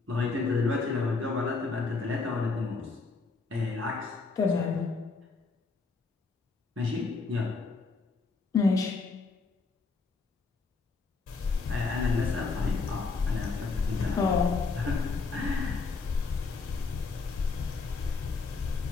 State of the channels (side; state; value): right; quieter; 4.2 dB